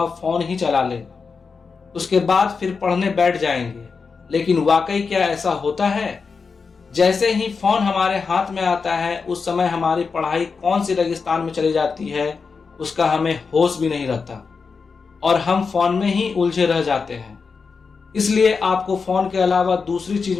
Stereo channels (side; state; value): right; quieter; 5.0 dB